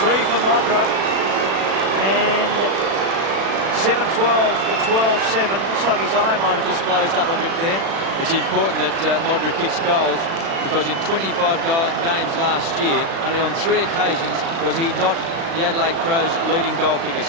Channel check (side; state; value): left; late; 36 ms